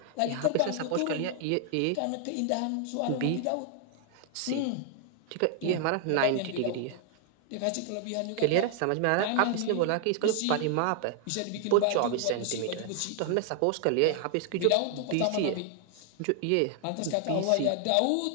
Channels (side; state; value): both; different; correlation 0.00